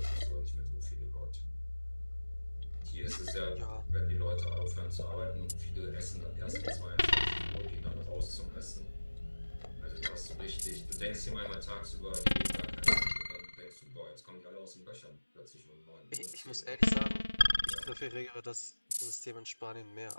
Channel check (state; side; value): inverted; both; correlation -1.00